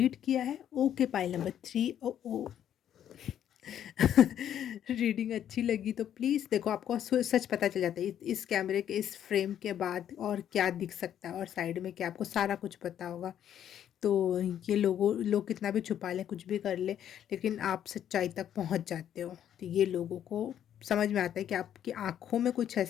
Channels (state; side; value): quieter; right; 10.2 dB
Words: किया है। Okay, pile number 3। ओ ओ रीडिंग अच्छी लगी तो प्लीज़ देखो, आपको सच पता चल जाता है इस कैमरे के इस फ्रेम के बाद और क्या दिख सकता है और साइड में क्या, आपको सारा कुछ पता होगा। तो ये लोग कितना भी छुपा लें, कुछ भी कर लें, लेकिन आप सच्चाई तक पहुंच जाते हो। तो ये लोगों को समझ में आता है कि आपकी आंखों में कुछ